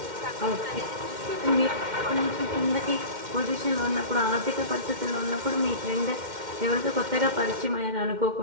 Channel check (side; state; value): left; late; 2.1 ms